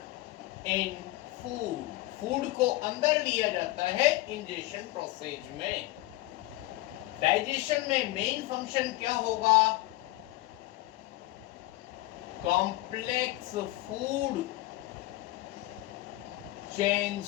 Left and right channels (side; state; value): right; quieter; 18.3 dB